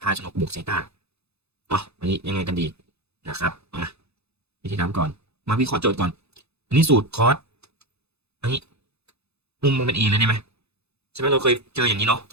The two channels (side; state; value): left; late; 0.79 ms